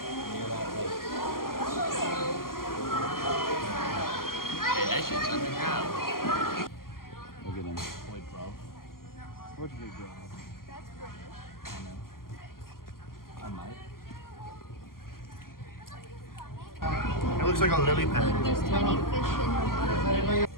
Hey, that shit's underground. Look at them. Boy, bro. What's big dog? That's British. I know. I might. It looks like a lily pad. There's tiny fish in the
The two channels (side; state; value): right; late; 0.92 ms